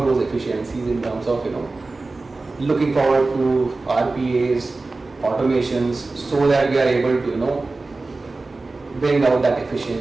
those efficiencies in terms of looking forward to RPAs, automations, so that we are able to bring out that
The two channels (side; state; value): left; quieter; 3.5 dB